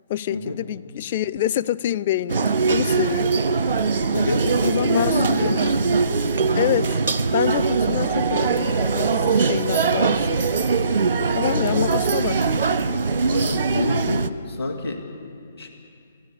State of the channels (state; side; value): inverted; both; correlation -0.61